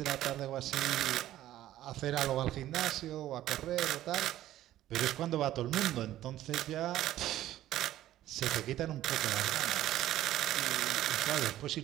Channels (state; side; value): quieter; left; 13.6 dB